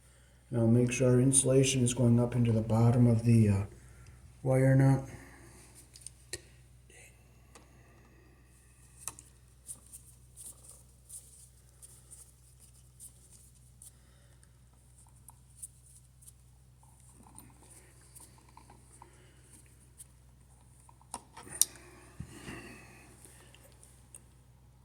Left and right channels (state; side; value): identical; both; correlation 1.00